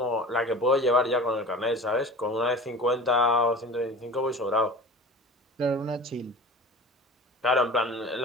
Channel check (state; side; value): normal; both; correlation 0.38